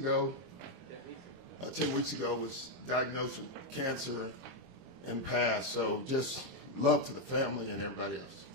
10 weeks ago was diagnosed with cancer and passed. So just love to the family and everybody else.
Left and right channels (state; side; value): late; left; 23 ms